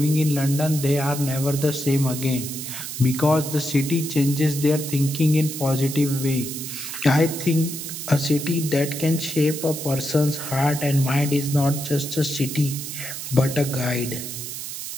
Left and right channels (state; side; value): noise; right; hiss, 7 dB below the sound